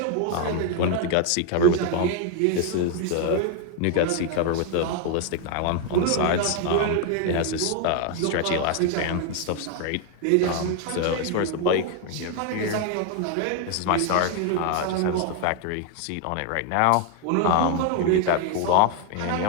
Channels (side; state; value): both; different; correlation 0.01